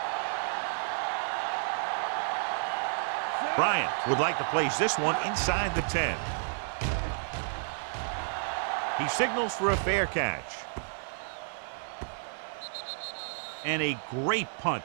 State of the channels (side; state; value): left; silent; 57 dB below the other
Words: Bryant would like to place this one inside the 10. He signals for a fair catch. And a great punt